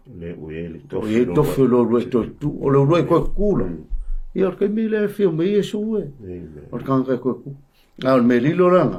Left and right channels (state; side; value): identical; both; correlation 1.00